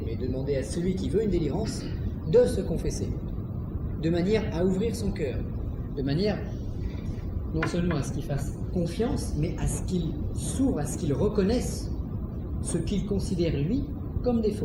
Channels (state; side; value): identical; both; correlation 1.00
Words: mais de demander à celui qui veut une délivrance de se confesser, de manière à ouvrir son cœur, de manière non seulement à ce qu'il fasse confiance, mais à ce qu'il s'ouvre, à ce qu'il reconnaisse ce qu'il considère lui comme des